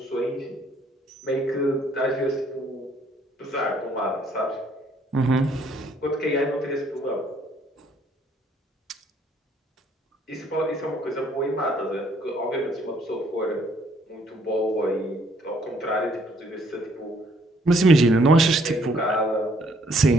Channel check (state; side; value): normal; both; correlation 0.64